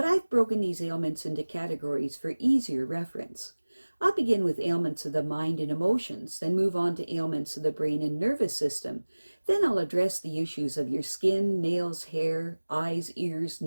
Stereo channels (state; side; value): inverted; both; correlation -1.00